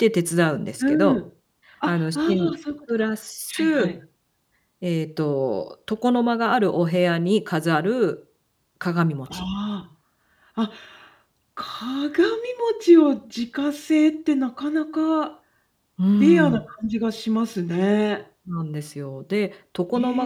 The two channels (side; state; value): both; identical; correlation 1.00